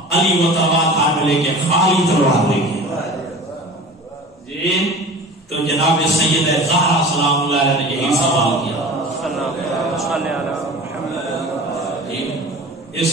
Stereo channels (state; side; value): normal; both; correlation 0.38